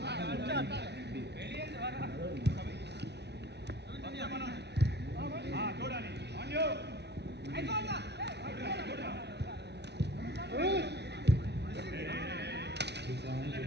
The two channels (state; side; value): late; left; 0.49 ms